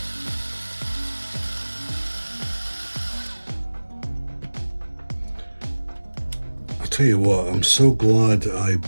I'll tell you what, I'm so glad I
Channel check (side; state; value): both; inverted; correlation -1.00